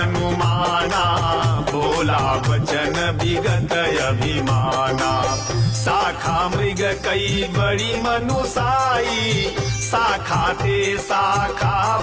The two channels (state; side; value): identical; both; correlation 1.00